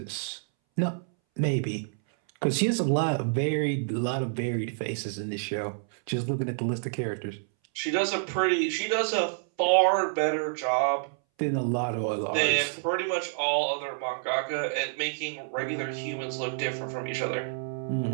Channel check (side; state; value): left; silent; 59 dB below the other